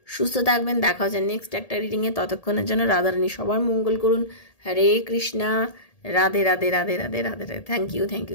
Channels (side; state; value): right; late; 1.8 ms